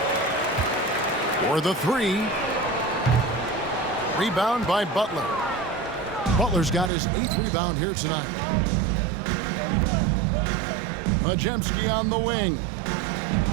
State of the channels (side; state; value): left; drops out; at 6.9 s